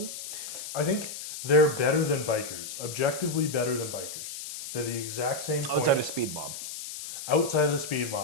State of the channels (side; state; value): left; noise; hiss, 9 dB below the sound